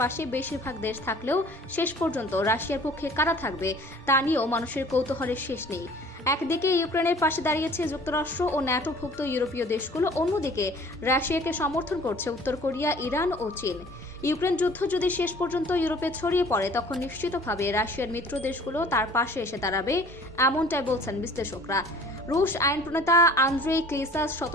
পাশে বেশিরভাগ দেশ থাকলেও শেষ পর্যন্ত রাশিয়ার পক্ষে কারা থাকবে তা নিয়েও মানুষের কৌতূহলের শেষ নেই। একদিকে ইউক্রেনের পাশে দাঁড়িয়েছে যুক্তরাষ্ট্র ও ন্যাটোভুক্ত ইউরোপীয় দেশগুলো, অন্যদিকে রাশিয়াকে সমর্থন করছে উত্তর কোরিয়া, ইরান ও চীন। ইউক্রেন যুদ্ধ যদি শেষ পর্যন্ত ইউরোপে ছড়িয়ে পড়ে তখন নিশ্চিতভাবে রাশিয়ার মিত্র দেশগুলো তার পাশে এসে দাঁড়াবে, এমনটাই বলছেন বিশ্লেষকরা। রুশ আইন প্রণেতা আন্দ্রেই ক্লিসাস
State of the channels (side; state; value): both; normal; correlation 0.50